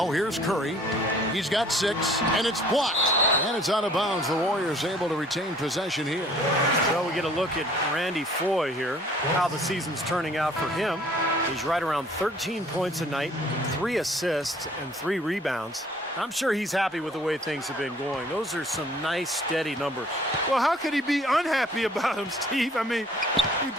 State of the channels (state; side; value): normal; both; correlation 0.55